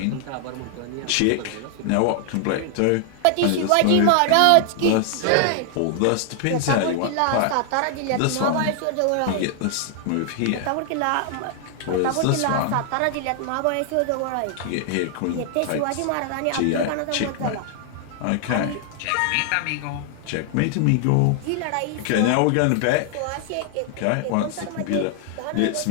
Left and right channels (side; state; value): both; different; correlation 0.00